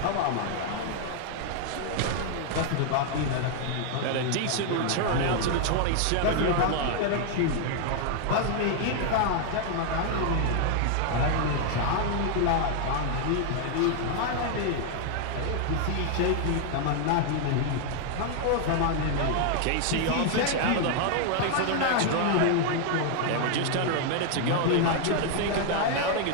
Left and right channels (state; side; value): different; both; correlation 0.00